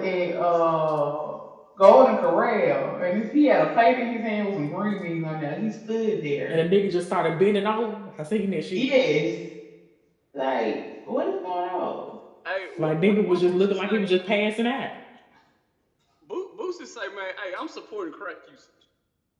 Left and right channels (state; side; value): identical; both; correlation 1.00